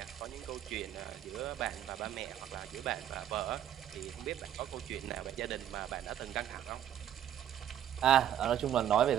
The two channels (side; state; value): left; quieter; 10.8 dB